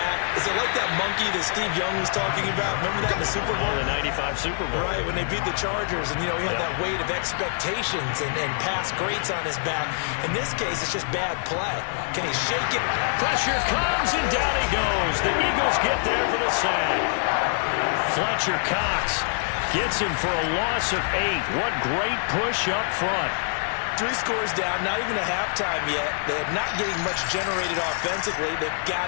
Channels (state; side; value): silent; right; 62 dB below the other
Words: Is it like that monkey that Steve Young was talking about? Remember that in the Super Bowl? The 95 Super Bowl. Right, when they beat the Chargers, and, you know, he had that weight of expectations and past greats on his back. In this case, it's just bad play. Can he shake it? Pressure comes, and down he goes. The Eagles get there for the sack. Fletcher Cox gets him for a loss of 8. What great push up front. 3 scores down, not even a halftime yet. They're not getting much generated offensively. They've